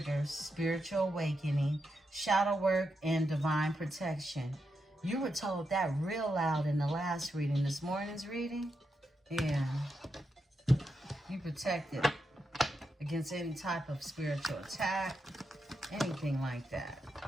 spiritual awakening, shadow work, and divine protection. You were told that real loud in the last reading. This morning's reading? Yeah. You protected against any type of spiritual attack, anything like that.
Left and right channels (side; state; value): both; normal; correlation 0.85